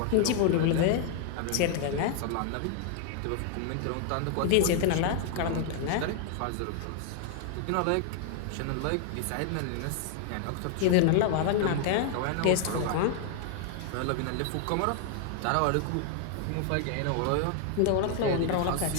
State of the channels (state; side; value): different; both; correlation 0.00